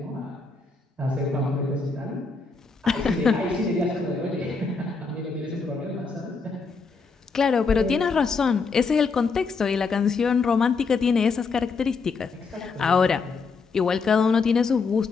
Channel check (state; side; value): quieter; right; 4.6 dB